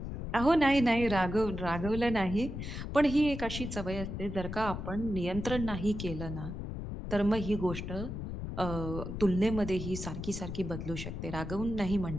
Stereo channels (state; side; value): noise; left; rumble, 6 dB below the sound